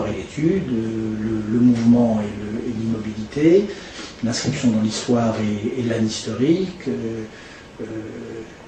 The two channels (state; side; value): identical; both; correlation 1.00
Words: et l'étude, le mouvement et l'immobilité, l'inscription dans l'histoire et l'âne historique,